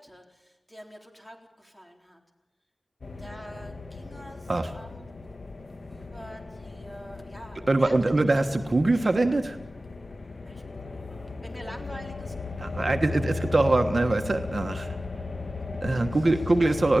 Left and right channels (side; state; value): both; normal; correlation 0.97